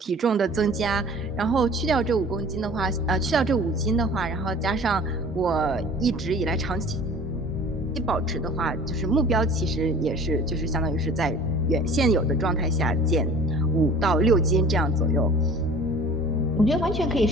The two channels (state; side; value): normal; both; correlation 0.46